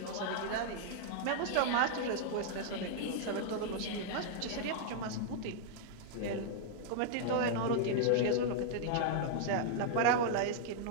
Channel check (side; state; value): both; different; correlation -0.01